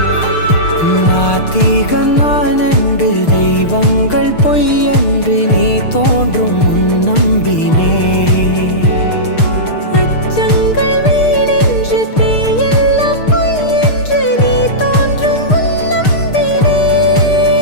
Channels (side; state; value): right; late; 6.6 ms